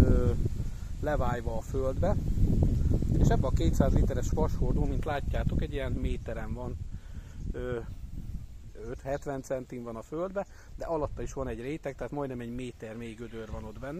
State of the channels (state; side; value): identical; both; correlation 1.00